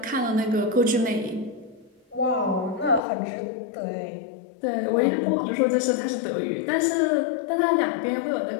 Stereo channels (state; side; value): drops out; right; at 3.0 s